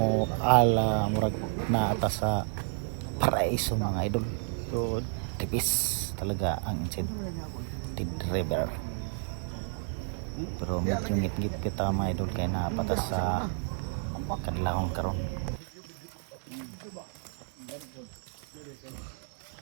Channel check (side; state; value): left; silent; 57 dB below the other